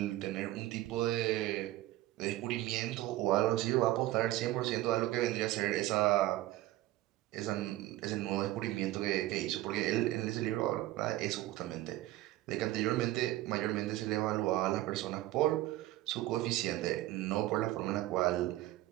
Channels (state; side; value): quieter; left; 16.1 dB